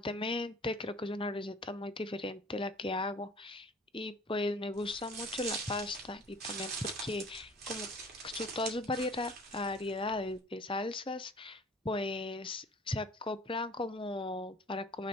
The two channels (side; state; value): both; normal; correlation 0.48